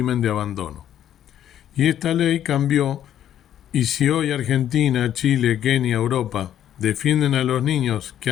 de abandono. Y esta ley cambió, y si hoy Argentina, Chile, Kenia, Europa defienden a los niños que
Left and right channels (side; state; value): right; quieter; 10.7 dB